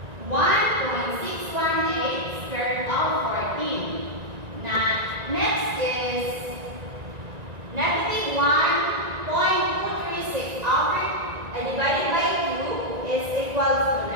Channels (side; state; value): left; late; 1.9 ms